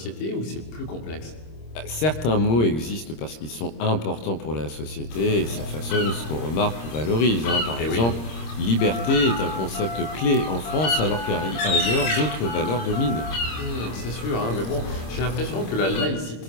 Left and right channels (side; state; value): right; late; 26 ms